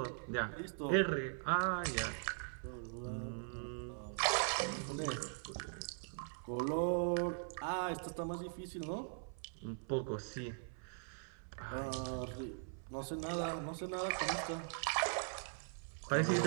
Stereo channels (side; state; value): left; silent; 50 dB below the other